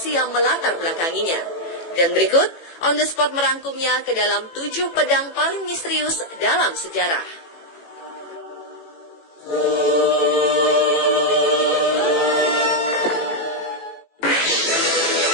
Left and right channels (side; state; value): right; late; 18 ms